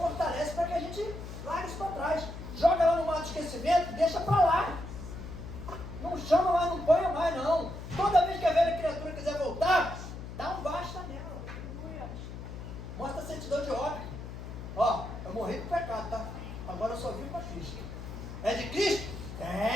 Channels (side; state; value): left; noise; hum, 10 dB below the sound